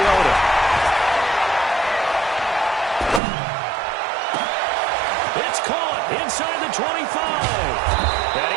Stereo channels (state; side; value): drops out; left; at 3.2 s